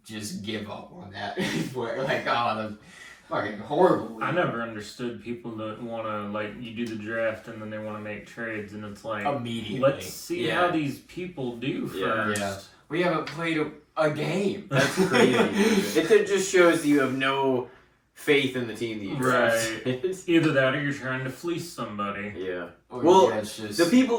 just give up on that. The fucking horrible. I never understood people that want to you do the draft and then they want to make trades and it's immediately. Let's see how these people do first. Yeah. We haven't played a game. That's crazy. It just shows you have no faith in the team that you drafted. Right. Either that or you're trying to fleece somebody. Yeah. Or Well, it's just the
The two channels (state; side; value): identical; both; correlation 1.00